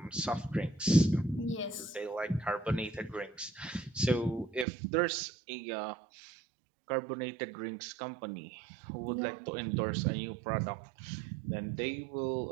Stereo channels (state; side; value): drops out; left; at 4.7 s